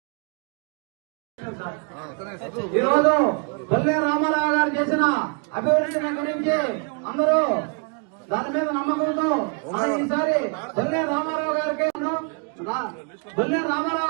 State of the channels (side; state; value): left; quieter; 36.9 dB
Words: ఈరోజు బొల్లారి రామారావు గారు చేసిన అభివృద్ధిని గురించి అందరూ దాని మీద నమ్మకంతో ఈసారి బొల్లారి రామారావు గారికి బొల్లారి